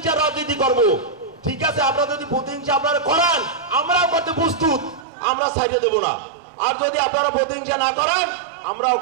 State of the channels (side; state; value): left; drops out; at 5.1 s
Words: রাজনীতি করব? ঠিক আছে, আপনারা যদি প্রতিহিংসা আপনারা করান আমরাও করতে প্রস্তুত, আমরা ছাইড়ে দেব না। আর যদি আপনারা প্রতিহিংসা না করেন আমরাও